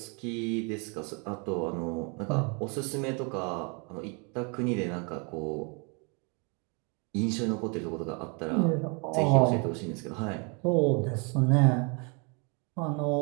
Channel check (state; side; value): quieter; left; 34.1 dB